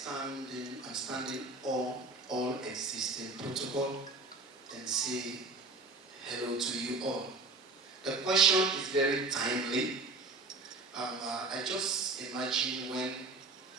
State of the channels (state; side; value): quieter; left; 3.3 dB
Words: standing on all existing protocol and say hello to you all. The question is very timely. I just imagine when